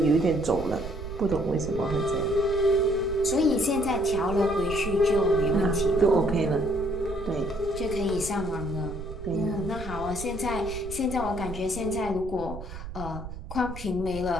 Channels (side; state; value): right; noise; rumble, 10 dB below the sound